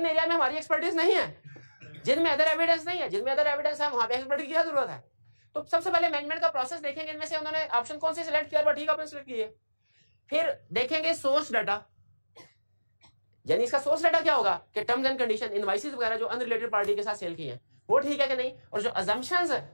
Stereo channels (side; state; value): both; inverted; correlation -1.00